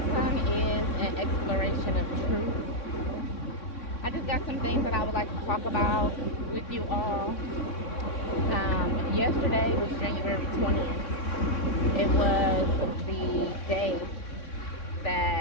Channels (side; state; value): right; late; 3.6 ms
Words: is an exploration of truth. I just got some things that I would like to talk about with you all. Yesterday was January 20th. It was the day